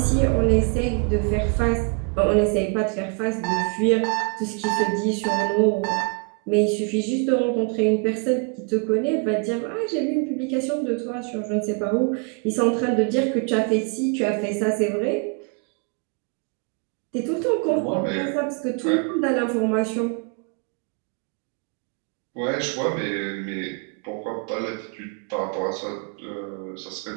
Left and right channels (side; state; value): left; quieter; 35.0 dB